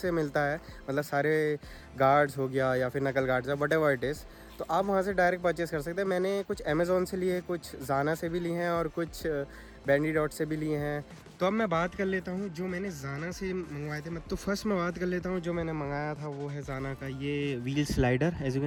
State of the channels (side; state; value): both; identical; correlation 1.00